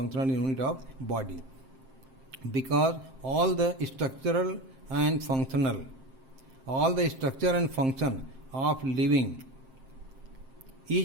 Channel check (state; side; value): late; left; 7.6 ms